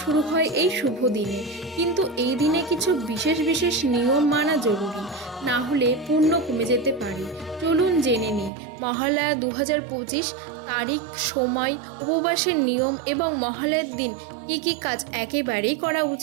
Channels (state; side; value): drops out; left; at 8.5 s